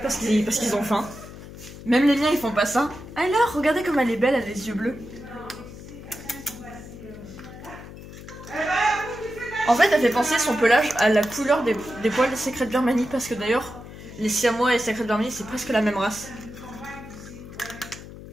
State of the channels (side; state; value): left; noise; hum, 15 dB below the sound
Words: parce qu'ils ont faim. Même les miens, ils font pas ça. Alors, regardez comme elle est belle, elle a les yeux bleus. En fait, elle fait penser son pelage à la couleur des poils des secrets de Birmanie. Parce que d'ailleurs, les siamois et les secrets de Birmanie, c'est presque la même race.